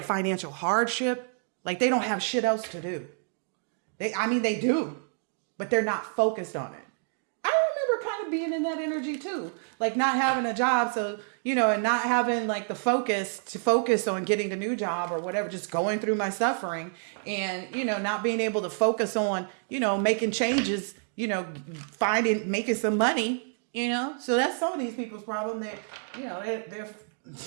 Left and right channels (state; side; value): silent; left; 59 dB below the other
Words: financial hardship. Like they don't have shit else to do. They do, but they're not focused on it. I remember kind of being in that energy too. Like not having a job. So, and not having like the focus on getting the new job or whatever, just going through my suffering and, not being able to focus on, making changes, making some money, so that's some of these people's problem. They're